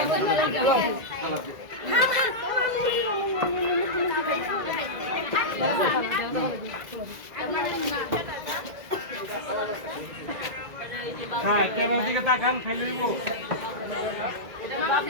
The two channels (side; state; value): left; late; 2.0 ms